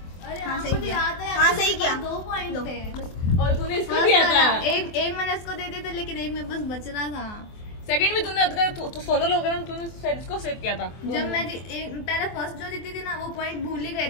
हाँ सही किया। 2 पॉइंट थे और तूने इसको दिया था। एक मैंने इसको दे दिया था, लेकिन एक में बस बच रहा था। सेकंड में तूने तो सोनल वगैरह तूने इसको सेव किया था। जब मैं पहले फर्स्ट जो जीती थी ना, वो पॉइंट भूल ही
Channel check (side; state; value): right; late; 24 ms